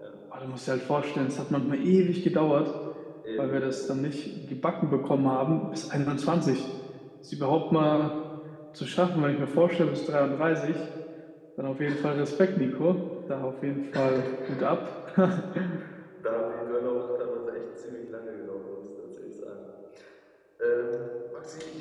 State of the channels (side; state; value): both; identical; correlation 1.00